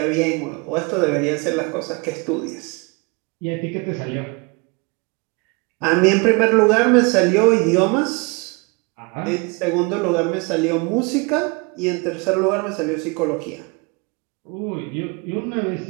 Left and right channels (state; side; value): quieter; left; 29.6 dB